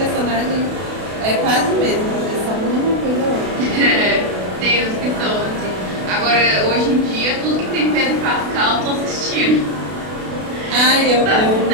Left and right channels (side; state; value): left; late; 32 ms